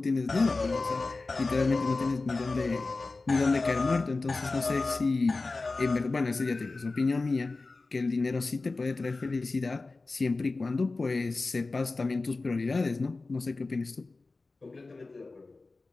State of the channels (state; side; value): quieter; right; 3.6 dB